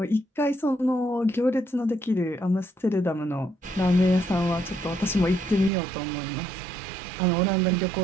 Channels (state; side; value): drops out; left; at 5.7 s